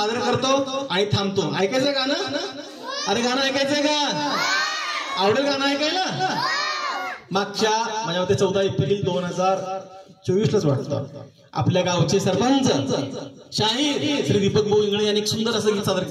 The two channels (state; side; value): identical; both; correlation 1.00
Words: करतो आणि थांबतो. ऐकायचं गाणं? अरे गाणं ऐकायचंय का? आवडेल गाणं ऐकायला? मागच्या माझ्या मते 14 एप्रिल 2024लाच वाटतं आपल्या गावचे सरपंच शाहीर श्री दीपक भाऊ इंगळे यांनी एक सुंदर असं गीत सादर